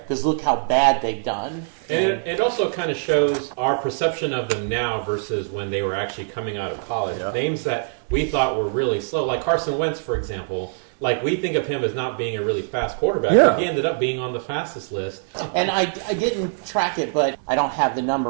look how bad they've done. And it also kind of shows our perception of them now versus when they were actually coming out of college. Names that we thought were really slow, like Carson Wentz, for example. Like, we think of him as not being a really fast quarterback, but he ended up being on the fastest list. And I didn't track it, but I don't have the number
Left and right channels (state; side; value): silent; left; digital silence